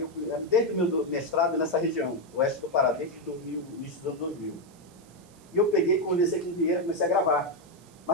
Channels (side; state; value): right; noise; hiss, 28 dB below the sound